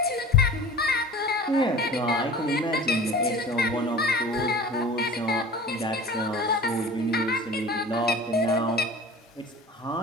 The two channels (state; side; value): normal; both; correlation 0.39